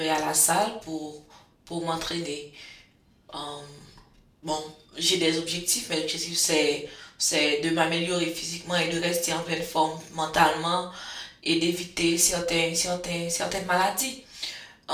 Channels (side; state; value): both; identical; correlation 1.00